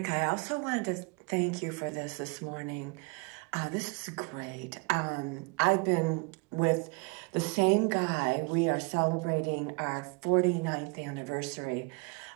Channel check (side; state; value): left; quieter; 30.1 dB